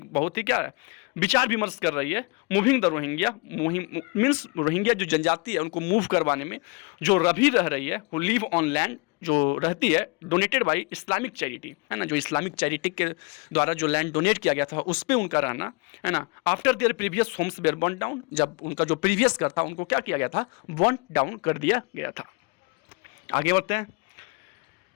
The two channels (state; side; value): quieter; right; 29.8 dB